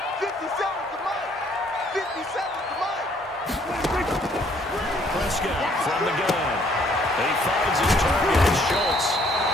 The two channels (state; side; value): normal; both; correlation 0.64